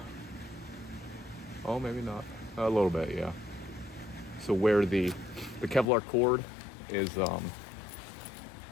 Oh, maybe not. A little bit, yeah. So where the Kevlar cord is,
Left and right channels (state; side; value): drops out; right; at 5.9 s